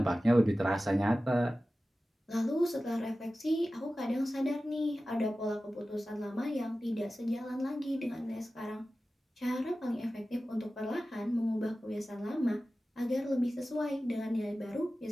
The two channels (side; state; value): both; normal; correlation 0.95